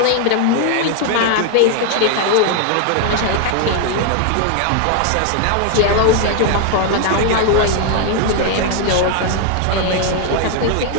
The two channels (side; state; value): both; different; correlation 0.00